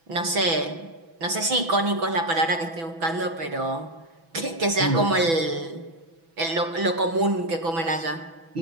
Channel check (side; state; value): left; late; 6.1 ms